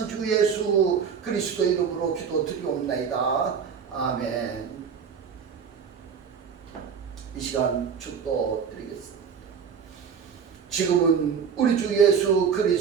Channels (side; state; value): left; quieter; 6.7 dB